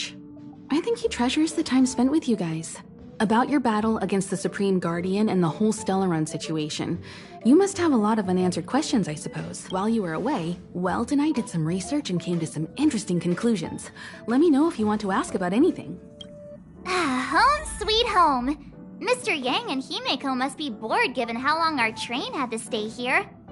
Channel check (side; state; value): both; identical; correlation 1.00